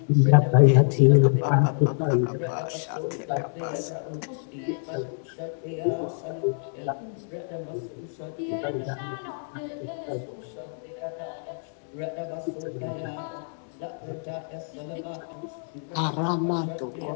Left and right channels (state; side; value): silent; right; digital silence